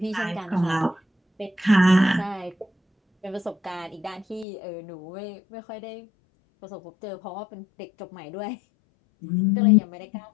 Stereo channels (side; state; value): right; drops out; at 4.5 s